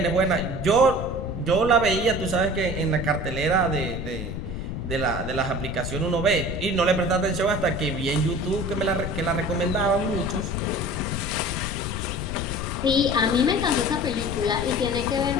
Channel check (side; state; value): left; noise; rumble, 5 dB below the sound